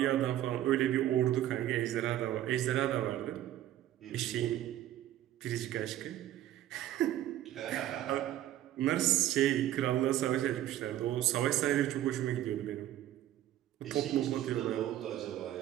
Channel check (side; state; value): left; quieter; 13.0 dB